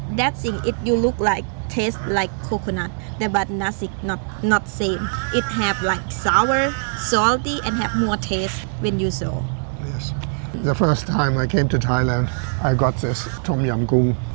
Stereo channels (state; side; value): silent; left; digital silence